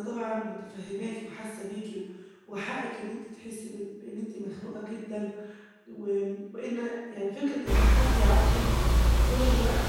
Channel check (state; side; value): identical; both; correlation 1.00